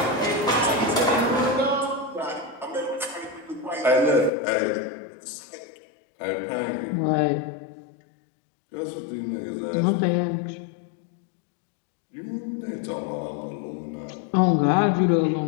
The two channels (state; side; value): drops out; right; at 4.3 s